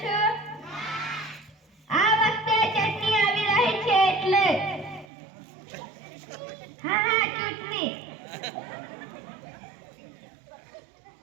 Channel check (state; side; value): drops out; left; at 5.1 s